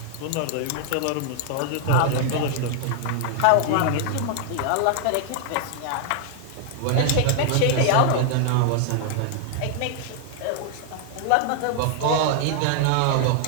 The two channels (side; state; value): both; different; correlation 0.00